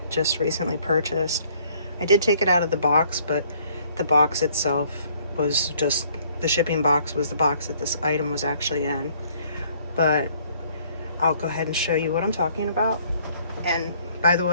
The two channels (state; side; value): inverted; both; correlation -0.61